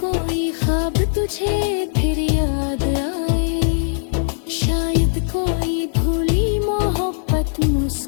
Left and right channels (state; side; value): silent; right; digital silence